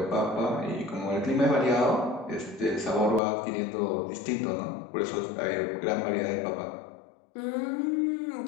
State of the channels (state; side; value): drops out; right; at 3.2 s